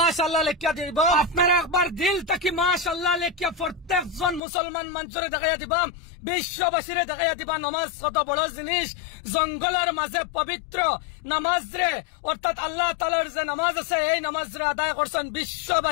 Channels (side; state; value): right; drops out; at 4.4 s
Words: লেখিয়া দিব। আপনারা একবার দিল থাকি মাশাআল্লাহ লেখিয়া প্রত্যেকজন মুসলমান মানুষরে দেখাইয়া দিবা, বিশ্ববাসীরে দেখাইয়া দিবা নমাজ কত বড় জিনিস। জঙ্গলের মাঝে পবিত্র নামাজ রে, অর্থাৎ আল্লাহ তাআলার যে নামাজ আছে এই নামাজ রে আদায় করছেন,